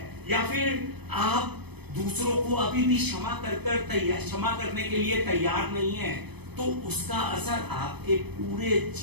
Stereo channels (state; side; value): late; left; 0.98 ms